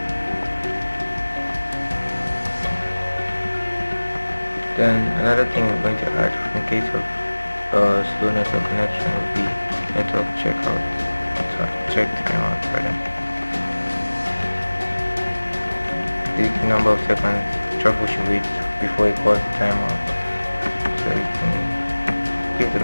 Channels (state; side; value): inverted; both; correlation -1.00